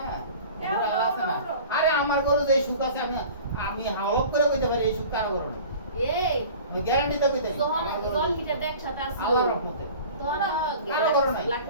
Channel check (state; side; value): inverted; both; correlation -0.42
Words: ওরা আল্লাহ আছে না। আরে আমার গরু যে সুখ আছে, আমি হাওলপ করে কইতে পারি এই সুখ কারো গরু না। এই আমি গ্যারান্টি তো কইতে পারি যখন জল হিটার দেখ সাথে আসলো আল্লাহর রহমতে। তখন কারো গরু নাই।